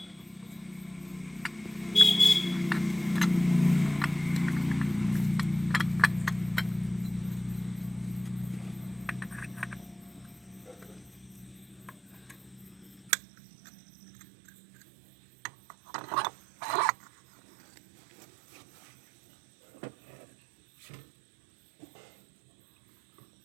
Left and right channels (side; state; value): left; drops out; at 13.1 s